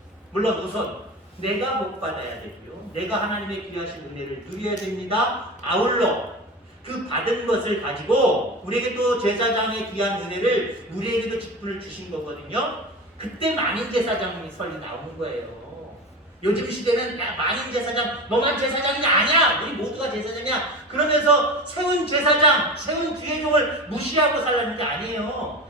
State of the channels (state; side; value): normal; both; correlation 0.29